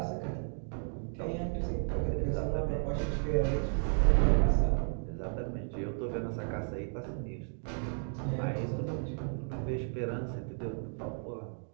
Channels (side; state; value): left; silent; 55 dB below the other